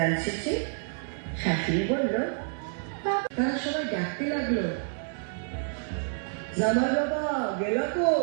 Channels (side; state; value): left; silent; 59 dB below the other